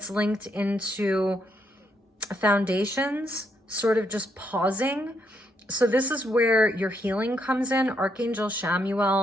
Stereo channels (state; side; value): normal; both; correlation 0.76